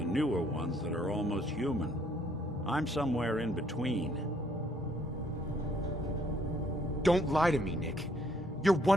newer ones that are almost human. I'm somewhere in between. Don't lie to me, Nick. You're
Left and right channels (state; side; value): normal; both; correlation 0.66